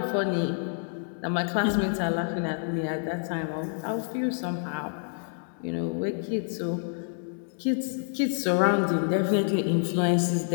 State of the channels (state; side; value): silent; right; 59 dB below the other